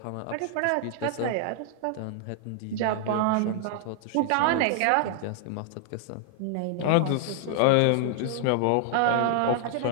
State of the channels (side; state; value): both; different; correlation 0.00